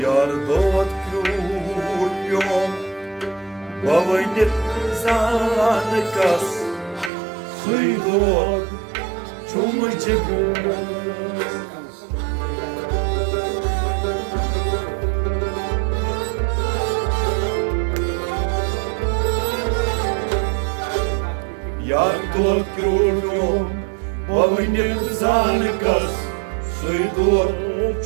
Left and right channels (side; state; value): left; drops out; at 7.1 s